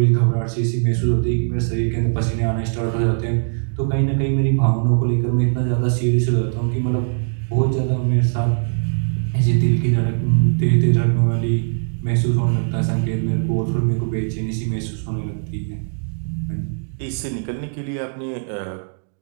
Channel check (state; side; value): silent; left; digital silence